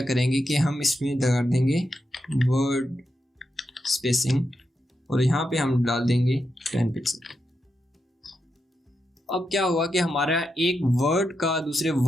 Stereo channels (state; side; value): normal; both; correlation 0.85